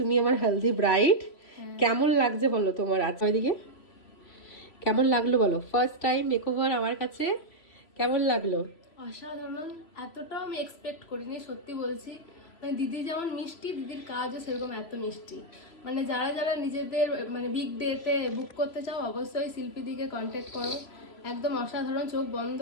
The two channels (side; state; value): right; late; 3.0 ms